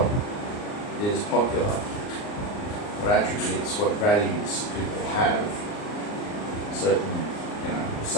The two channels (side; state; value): right; late; 39 ms